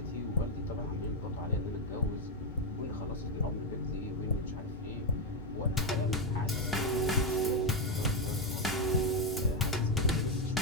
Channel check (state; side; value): normal; both; correlation 0.05